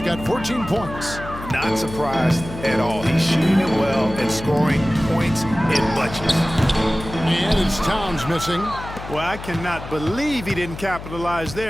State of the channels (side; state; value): left; noise; hum, 11 dB below the sound